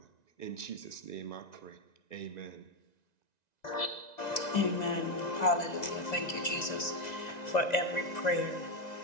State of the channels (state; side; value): late; right; 1.9 ms